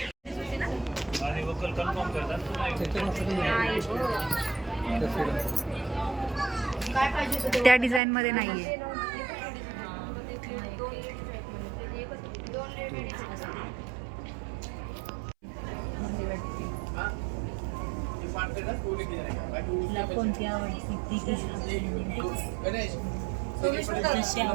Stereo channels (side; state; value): left; drops out; at 8.0 s